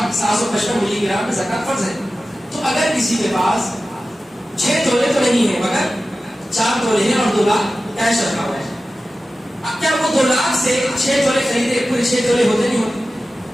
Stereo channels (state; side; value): normal; both; correlation 0.95